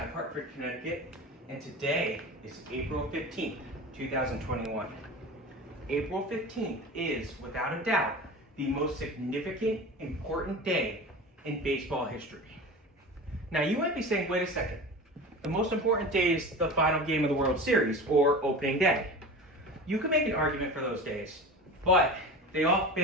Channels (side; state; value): both; normal; correlation 0.32